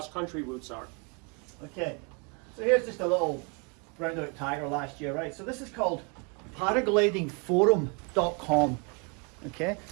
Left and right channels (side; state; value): left; quieter; 34.5 dB